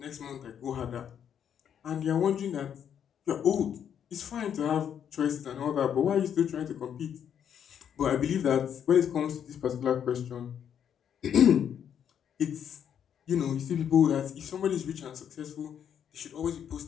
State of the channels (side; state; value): right; quieter; 8.7 dB